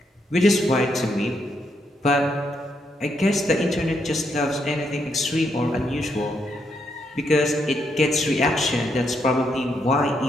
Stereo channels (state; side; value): normal; both; correlation 0.78